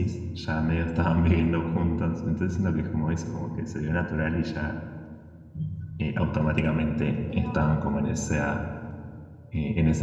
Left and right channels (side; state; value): both; identical; correlation 1.00